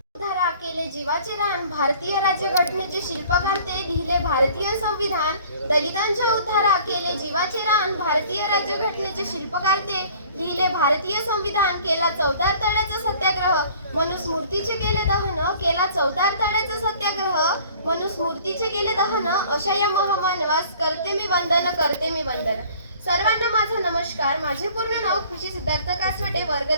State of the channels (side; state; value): both; inverted; correlation -0.51